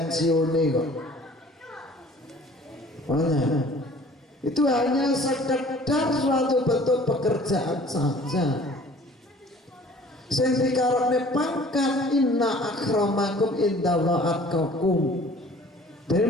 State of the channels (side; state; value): both; normal; correlation 0.50